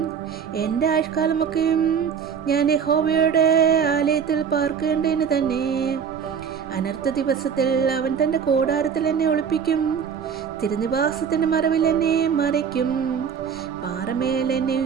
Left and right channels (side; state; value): left; quieter; 7.2 dB